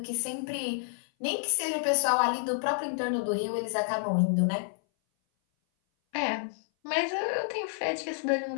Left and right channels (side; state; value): right; silent; 57 dB below the other